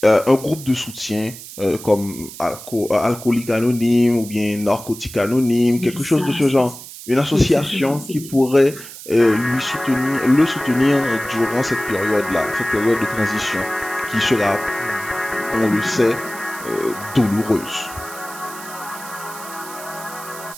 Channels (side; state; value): right; noise; hiss, 14 dB below the sound